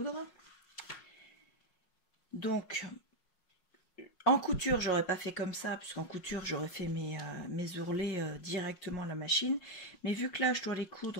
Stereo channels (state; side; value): late; right; 5.5 ms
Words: Donc en couture, j'aurais pas fait comme ça, puisqu'en couture, j'aurais fait mes ourlets directement à la machine. Mais vu que là, je dois les